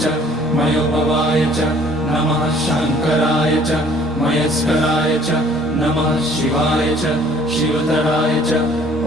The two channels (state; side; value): normal; both; correlation 0.56